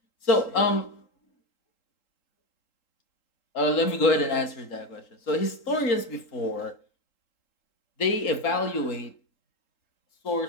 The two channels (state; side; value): late; right; 3.8 ms